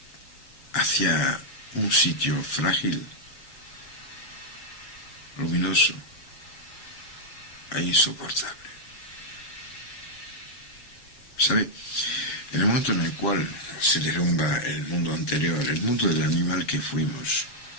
hacia un sitio frágil, luminoso e insoportable. ¿Sabe? En el momento en el cual se derrumba el mundo anterior, el mundo del animal que fuimos,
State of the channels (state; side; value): late; right; 7.2 ms